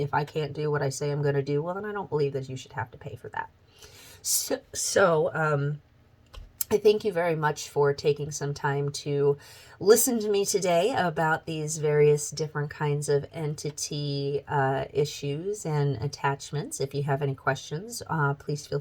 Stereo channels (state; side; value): identical; both; correlation 1.00